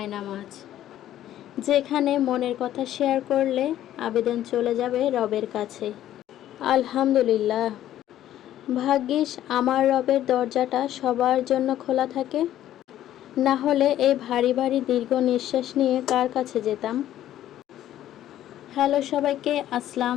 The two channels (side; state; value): right; quieter; 12.4 dB